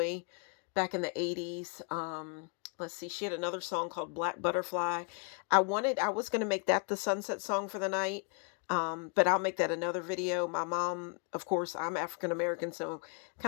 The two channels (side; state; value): right; quieter; 37.5 dB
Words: back in the 80s. Let's see, she had another song called Black Butterfly. I was going to make that the sunset song for the night. But I'll make that another video. My mom, of course, I'm African American, so